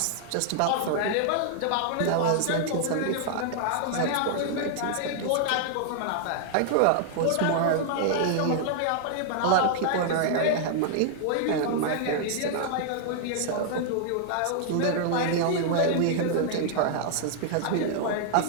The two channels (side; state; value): both; different; correlation -0.01